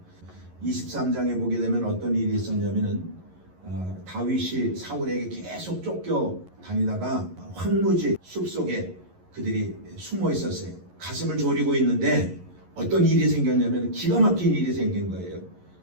23장에 보게 되면 어떤 일이 있었냐면은 다윗이 사울에게 계속 쫓겨 다니다가 황무지 숲속에 그들이 숨어 있었어요. 가슴을 졸이고 있는데 어떤 일이 생겼냐면 기가 막힌 일이 생긴 거예요.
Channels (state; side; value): late; left; 11 ms